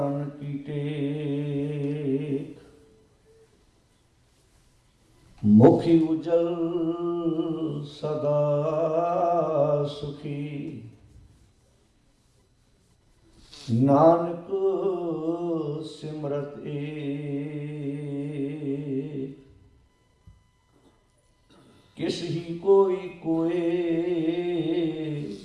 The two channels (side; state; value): both; identical; correlation 1.00